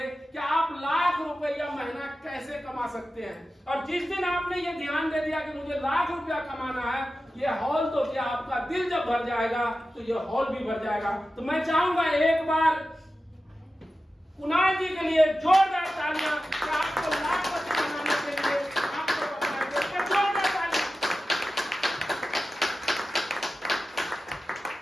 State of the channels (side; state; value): both; normal; correlation 0.94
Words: कि आप लाख रुपया महीना कैसे कमा सकते हैं। और जिस दिन आपने ये ध्यान दे दिया कि मुझे लाख रुपया कमाना है, ये हॉल तो क्या, आपका दिल जब भर जाएगा तो ये हॉल भी भर जाएगा। तो मैं चाहूंगा एक बार कुणाल जी के लिए जोरदार तालियां कि आपको लाखपति बनाने के लिए आपको बताएंगे। जोरदार तालियां।